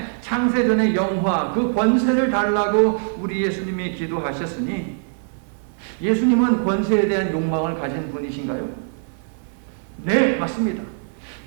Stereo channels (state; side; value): silent; left; 56 dB below the other